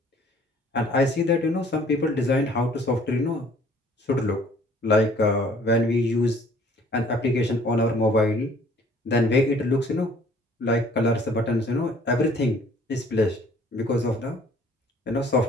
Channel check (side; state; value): both; normal; correlation 0.56